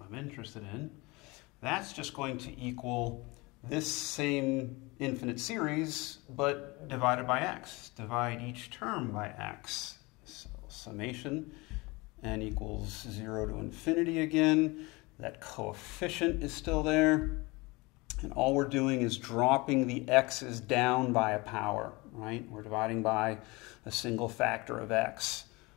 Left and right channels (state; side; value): quieter; right; 24.4 dB